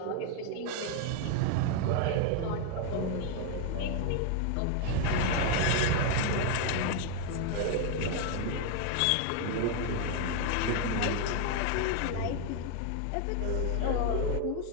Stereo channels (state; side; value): different; both; correlation 0.01